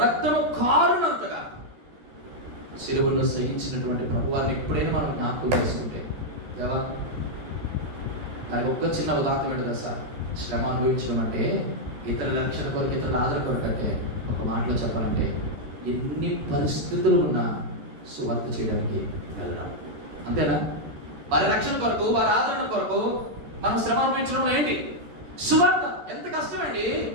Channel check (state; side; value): late; left; 13 ms